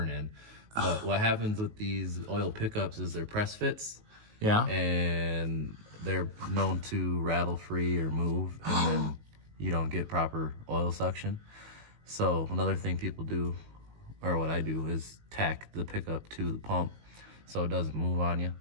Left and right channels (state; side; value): late; left; 19 ms